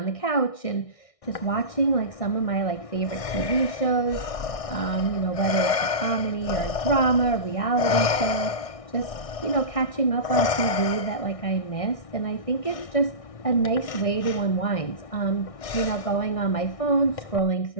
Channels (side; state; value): right; late; 1.6 ms